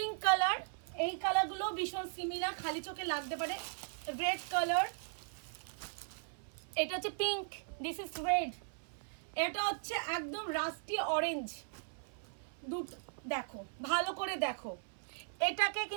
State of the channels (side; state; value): left; silent; 52 dB below the other